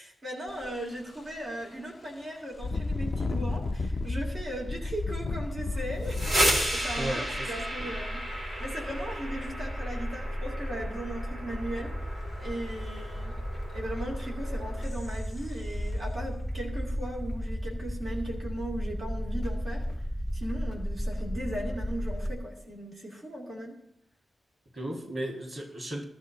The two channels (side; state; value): both; normal; correlation 0.91